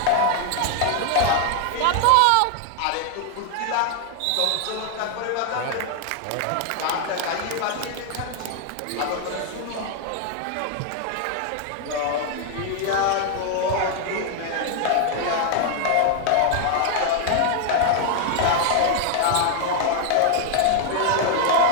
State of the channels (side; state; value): both; different; correlation 0.00